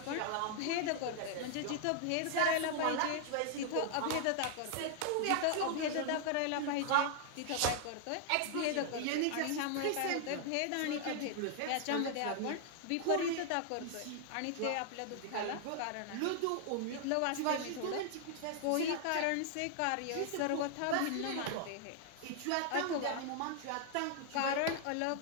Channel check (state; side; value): different; both; correlation 0.00